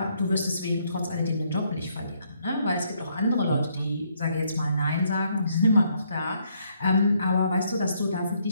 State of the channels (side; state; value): both; inverted; correlation -0.72